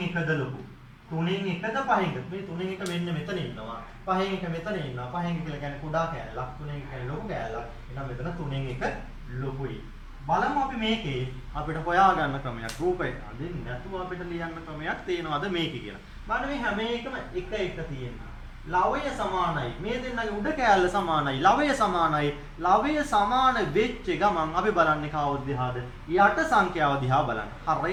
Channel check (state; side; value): identical; both; correlation 1.00